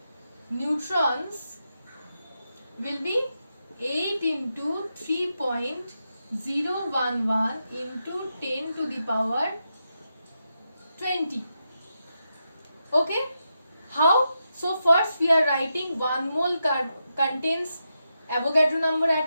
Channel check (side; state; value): both; inverted; correlation -0.86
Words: neutrons will be 8 into 3.011 into 10 to the power 20. Okay, how? So first we are writing 1 mole contains Avogadro number